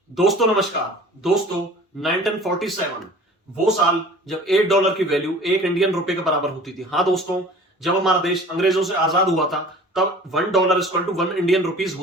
दोस्तों नमस्कार। दोस्तों 1947 वो साल जब $1 की वैल्यू एक इंडियन रुपए के बराबर होती थी। हाँ दोस्तों, जब हमारा देश अंग्रेजों से आजाद हुआ था तब $1 इक्वल टू 1 इंडियन रुपीज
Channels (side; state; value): both; normal; correlation 0.45